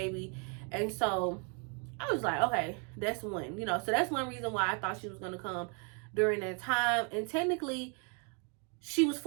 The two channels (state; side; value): quieter; left; 36.9 dB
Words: And so I was like, okay, that's one, so that's one reason why I thought she was going to come during that time. And technically, she was